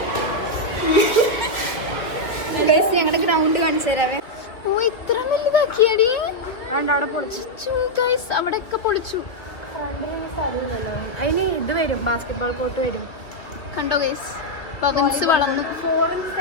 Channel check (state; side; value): late; right; 2.2 ms